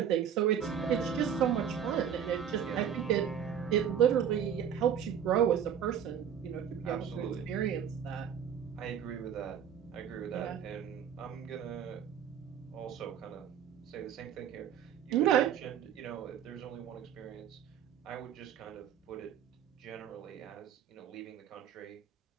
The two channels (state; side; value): quieter; left; 8.7 dB